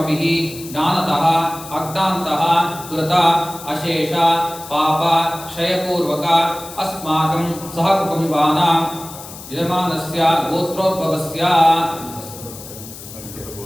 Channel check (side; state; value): left; noise; hiss, 14 dB below the sound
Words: ಜ್ಞಾನತಃ ಅಜ್ಞಾನತಃ ಕೃತ ಅಶೇಷ ಪಾಪ ಕ್ಷಯಪೂರ್ವಕ ಅಸ್ಮಾಕಂ ಸಹ ಕುಟುಂಬಾನಾಂ ಯಜಮಾನಸ್ಯ ಗೋತ್ರೋದ್ಭವಸ್ಯ